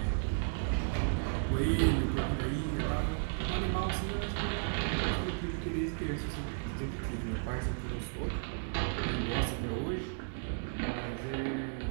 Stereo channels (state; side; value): silent; left; digital silence